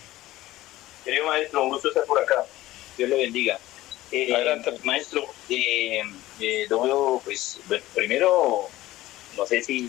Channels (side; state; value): right; quieter; 16.4 dB